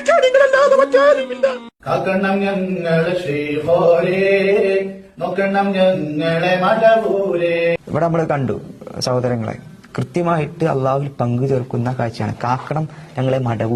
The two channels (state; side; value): identical; both; correlation 1.00